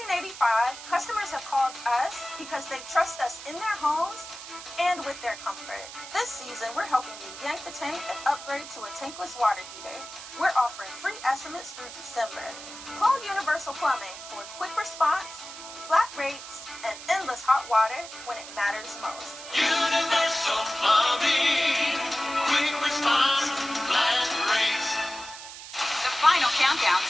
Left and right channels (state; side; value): noise; right; hiss, 13 dB below the sound